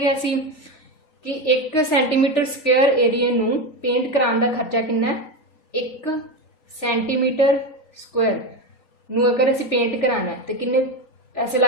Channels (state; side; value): late; right; 3.9 ms